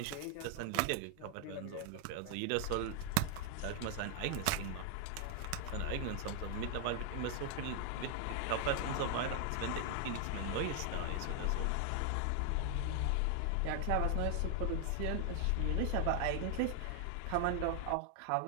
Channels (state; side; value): different; both; correlation 0.00